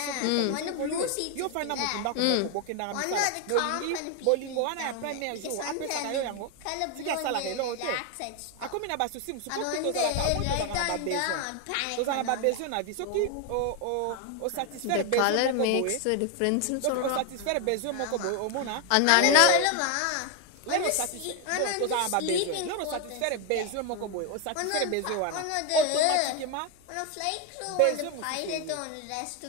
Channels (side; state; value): both; different; correlation 0.01